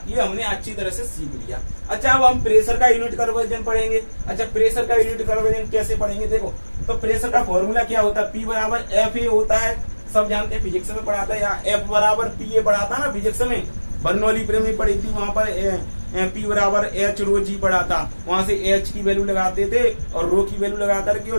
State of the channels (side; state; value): both; inverted; correlation -1.00